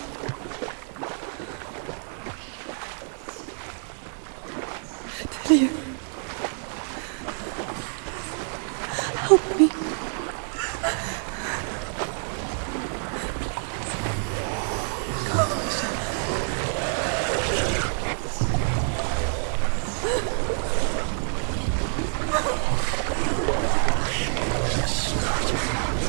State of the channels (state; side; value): silent; left; 60 dB below the other